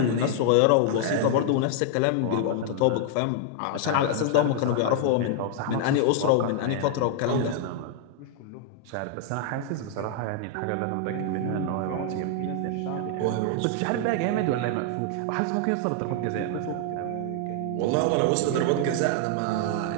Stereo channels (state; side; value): different; both; correlation 0.00